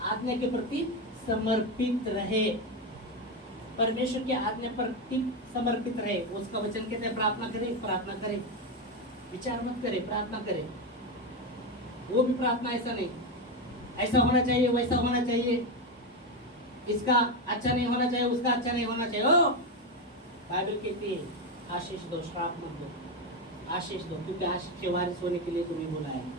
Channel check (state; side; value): normal; both; correlation 0.11